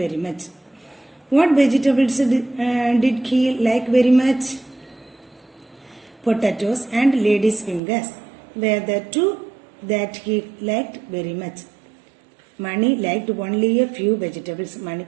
very much. What vegetables did he like very much? Potatoes and lady's fingers were the two that he liked very much. Mani liked only a few vegetables.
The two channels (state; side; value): drops out; left; at 7.8 s